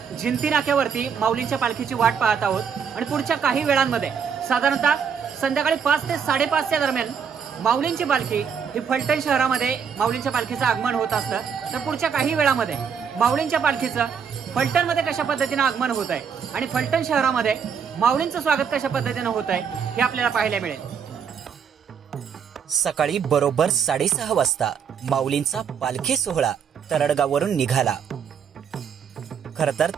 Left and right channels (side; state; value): left; quieter; 7.0 dB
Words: जिंती नाक्यावरती माऊलींच्या पालखीची वाट पाहत आहोत आणि पुढच्या काही वेळांमध्ये साधारणतः संध्याकाळी 5 ते 5:30 दरम्यान माऊलींची पालखी ही फलटण शहरामध्ये माऊलींच्या पालखीचं आगमन होत असतं. तर पुढच्या काही वेळामध्ये माऊलींच्या पालखीचं फलटणमध्ये कशा पद्धतीनं आगमन होत आहे आणि फलटण शहरामध्ये माऊलींचं स्वागत कशा पद्धतीनं होत आहे हे आपल्याला पाहायला मिळेल. सकाळी बरोबर 6:30 वाजता माऊलींचा पालखी सोहळा तरडगाववरून निघाला. खरं तर